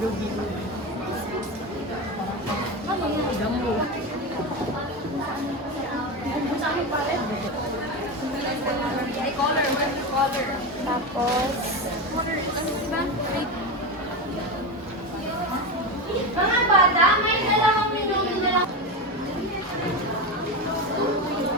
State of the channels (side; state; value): both; normal; correlation 0.18